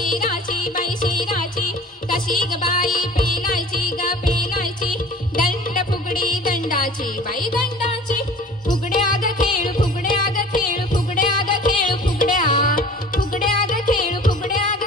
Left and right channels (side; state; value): both; normal; correlation 0.44